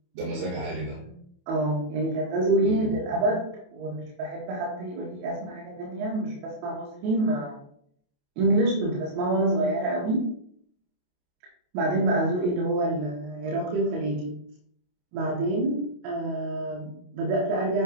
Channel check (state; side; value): late; left; 28 ms